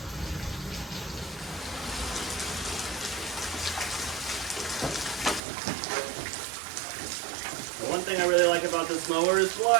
The one thing I really like about this mower is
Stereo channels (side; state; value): left; drops out; at 5.4 s